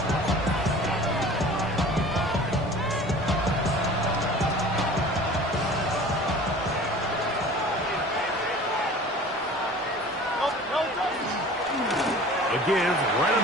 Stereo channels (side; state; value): both; normal; correlation 0.43